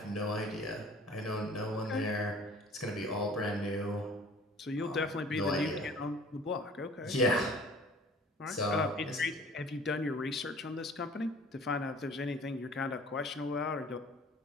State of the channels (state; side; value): normal; both; correlation 0.49